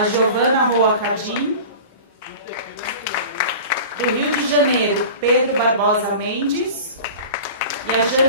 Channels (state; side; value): inverted; both; correlation -0.37